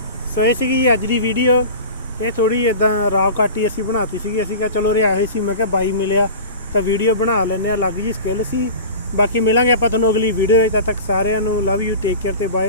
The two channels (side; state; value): both; inverted; correlation -0.34